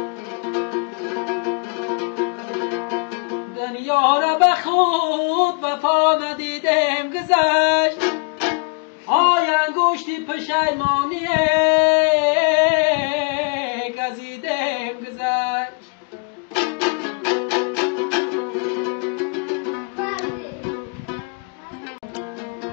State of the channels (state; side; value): quieter; right; 35.7 dB